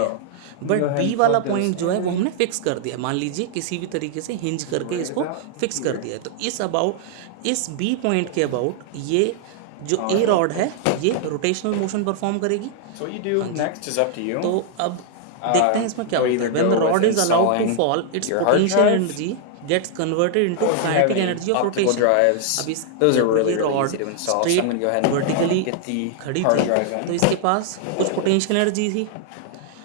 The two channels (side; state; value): both; different; correlation 0.00